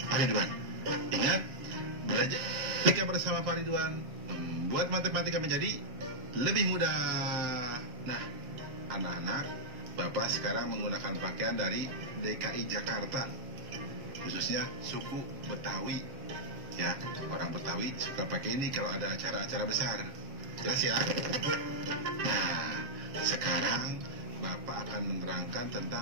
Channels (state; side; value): late; left; 7.5 ms